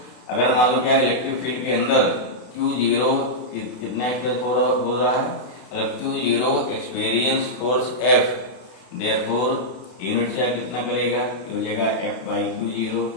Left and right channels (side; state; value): right; late; 32 ms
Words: अगर मान लो क्या इलेक्ट्रिक फील्ड के अंदर क्यू जीरो कितना एक्सपीरियंस हो रहा है, अगर Q zero experience force F, therefore unit charge कितना करेगा, हो जाएगा एफ बाई क्यू जीरो।